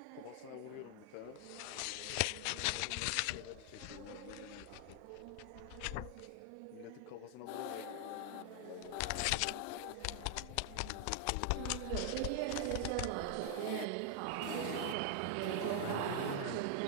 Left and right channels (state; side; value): different; both; correlation 0.00